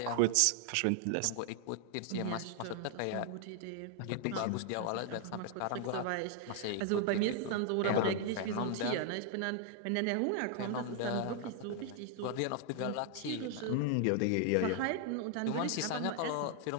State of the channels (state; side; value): different; both; correlation 0.00